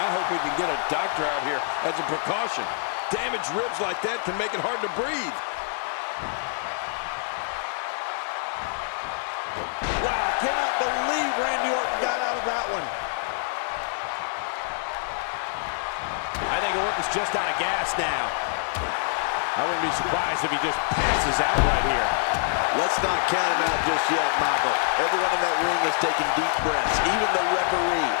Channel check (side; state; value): right; silent; digital silence